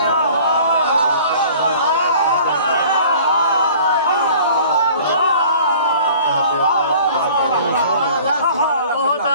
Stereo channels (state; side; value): inverted; both; correlation -0.48